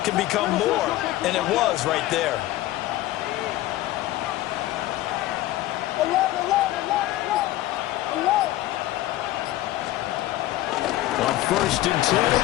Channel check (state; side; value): quieter; right; 15.7 dB